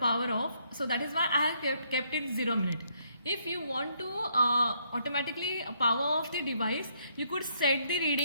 off, so that is why I have kept it 0 minute. If you want to automatically power off the device, you could set the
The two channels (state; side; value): inverted; both; correlation -0.71